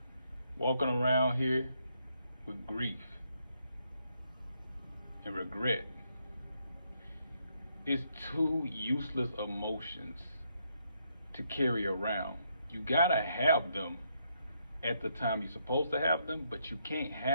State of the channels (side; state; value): both; inverted; correlation -0.75